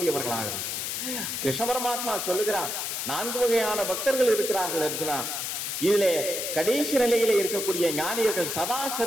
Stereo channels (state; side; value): noise; left; hiss, 3 dB below the sound